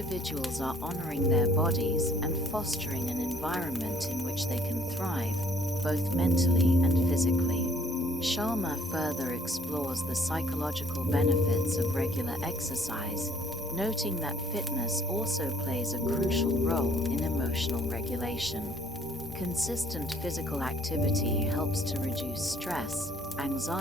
are honoring their bodies and fostering an environment in which they can thrive, both mentally and physically. Sharma further explores the psychological benefits of regular exercise, noting that fitness also plays a crucial role in emotional regulation. Consistent physical activity helps to reduce stress,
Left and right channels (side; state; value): both; normal; correlation 0.61